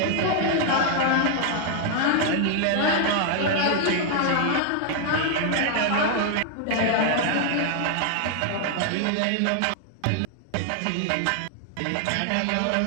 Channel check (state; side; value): different; both; correlation 0.00